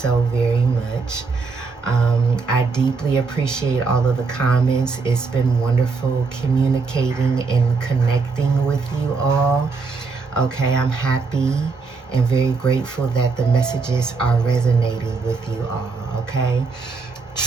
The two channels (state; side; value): quieter; left; 4.5 dB